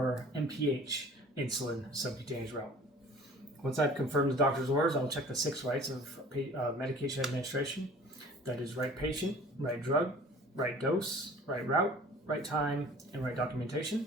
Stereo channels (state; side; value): normal; both; correlation 0.47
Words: MPH insulin subcutaneous route. Once I've confirmed the doctor's orders, I'll check the 6 rights of medication administration. That is right patient, right drug, right dose, right route, right time, and right documentation.